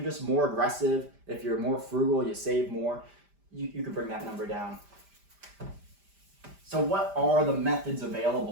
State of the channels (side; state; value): left; late; 5.0 ms